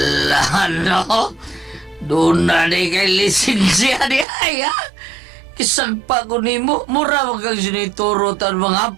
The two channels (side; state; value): left; drops out; at 4.2 s